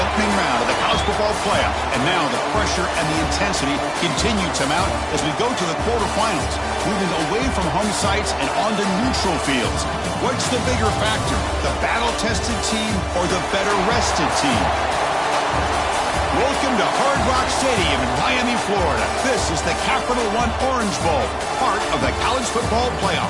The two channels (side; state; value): both; identical; correlation 1.00